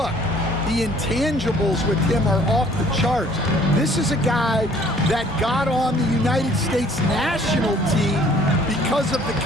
The intangibles with him are off the charts. This is a guy that got on the United States national team because of the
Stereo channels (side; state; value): both; normal; correlation 0.57